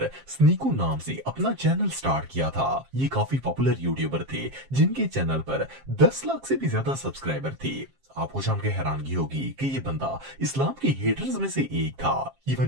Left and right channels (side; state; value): left; late; 7.5 ms